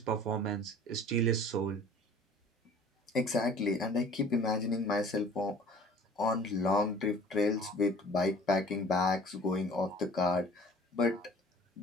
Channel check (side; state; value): both; normal; correlation 0.49